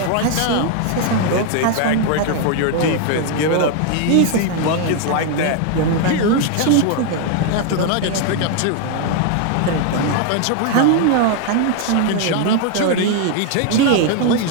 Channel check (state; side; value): different; both; correlation 0.00